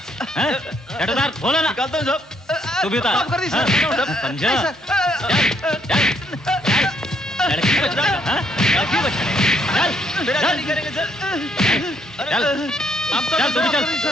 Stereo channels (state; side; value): normal; both; correlation 0.71